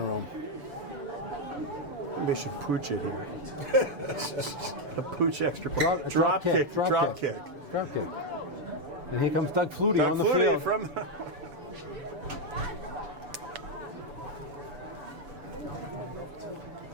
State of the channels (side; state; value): left; late; 7.0 ms